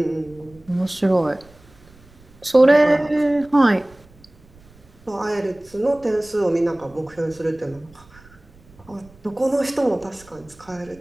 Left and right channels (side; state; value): right; noise; rumble, 26 dB below the sound